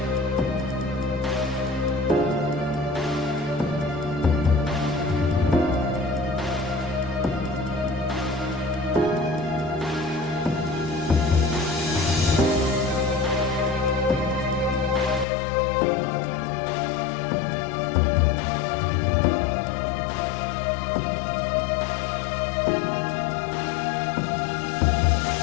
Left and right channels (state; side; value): drops out; right; at 15.2 s